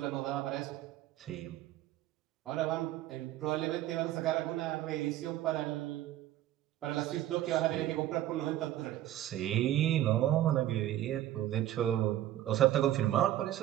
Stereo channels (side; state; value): left; quieter; 13.4 dB